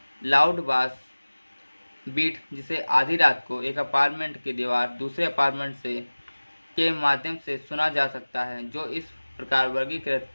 लाउड बास बीट जिसे आधी रात को एक अपार्टमेंट की दीवार दूसरे अपार्टमेंट से के माध्यम से सुना जा सकता है जो इस प्रकार वर्गीकृत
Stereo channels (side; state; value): both; inverted; correlation -1.00